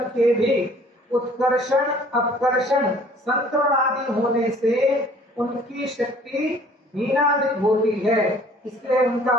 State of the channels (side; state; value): both; normal; correlation 0.54